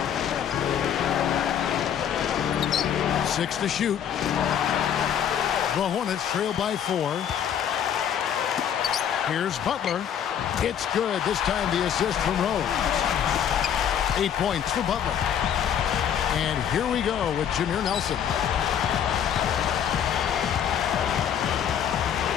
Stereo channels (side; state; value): right; quieter; 8.9 dB